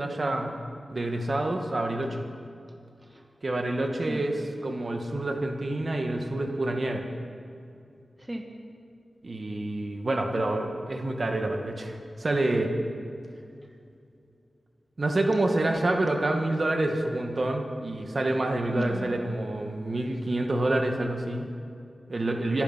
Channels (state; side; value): normal; both; correlation 0.95